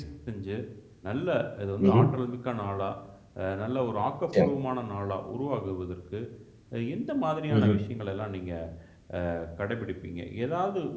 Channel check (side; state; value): both; identical; correlation 1.00